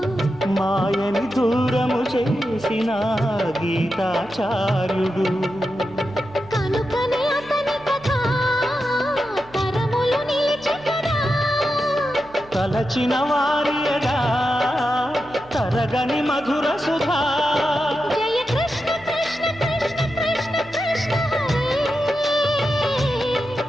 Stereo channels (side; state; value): right; noise; hum, 23 dB below the sound